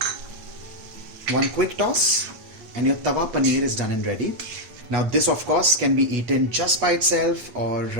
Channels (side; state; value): left; late; 8.3 ms